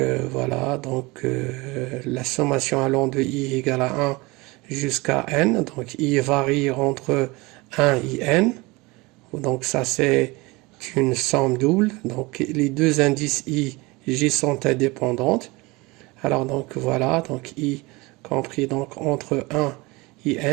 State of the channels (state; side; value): quieter; left; 23.8 dB